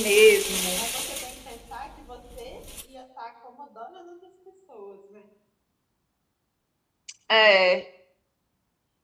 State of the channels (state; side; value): identical; both; correlation 1.00